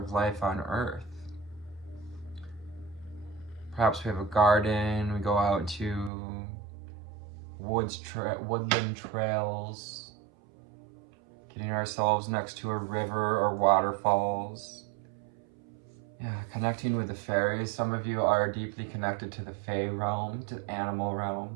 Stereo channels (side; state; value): left; drops out; at 6.1 s